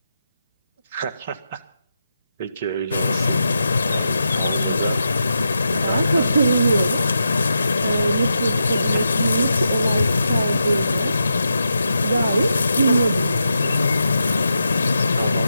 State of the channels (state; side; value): inverted; both; correlation -0.86